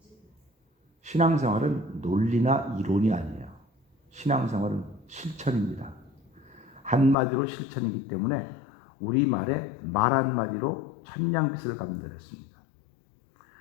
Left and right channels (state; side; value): drops out; right; at 7.2 s